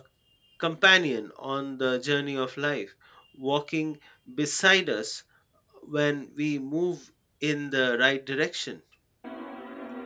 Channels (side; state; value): both; identical; correlation 1.00